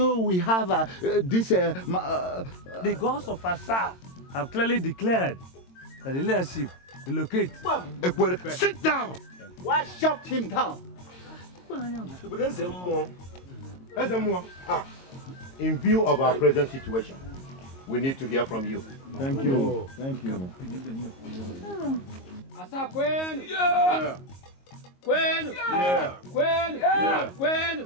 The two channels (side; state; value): right; late; 22 ms